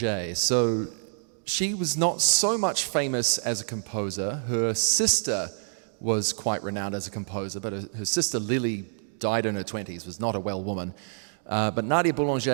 So she was not so much famous as a composer. Her sister was quite renowned as a composer, but her sister Lily died in her 20s, was not a well woman. But Nadia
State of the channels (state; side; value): silent; left; digital silence